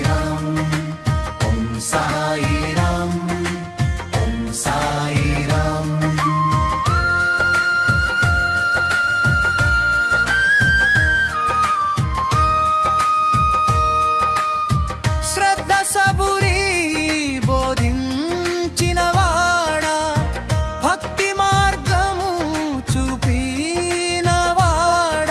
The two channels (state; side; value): identical; both; correlation 1.00